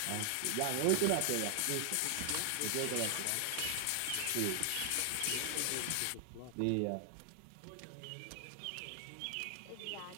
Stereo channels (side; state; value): both; different; correlation 0.00